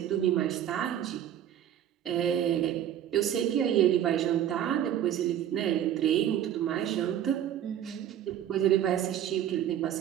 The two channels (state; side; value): quieter; left; 10.8 dB